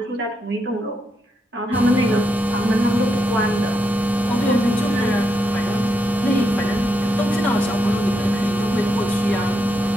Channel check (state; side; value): normal; both; correlation 0.82